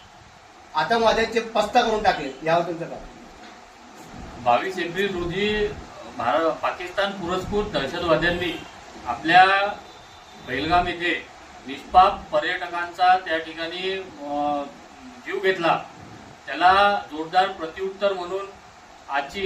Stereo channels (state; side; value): identical; both; correlation 1.00